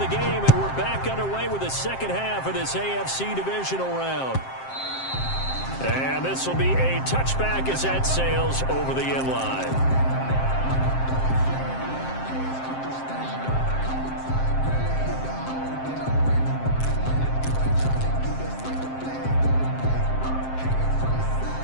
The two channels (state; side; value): late; right; 7.6 ms